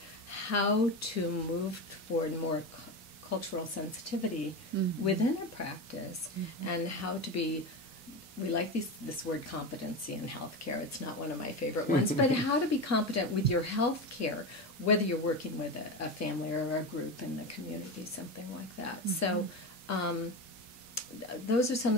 how to move toward more cultural sensitivity within a practice, and how to be, we like this word competency in healthcare. It's not one of my favorite ones, but how to be competent with your healthcare, whether you're working with a family or a group in the community, something like that. So those are some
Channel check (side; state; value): both; normal; correlation 0.20